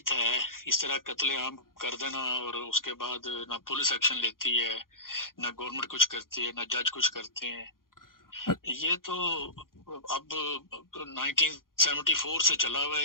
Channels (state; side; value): late; right; 0.91 ms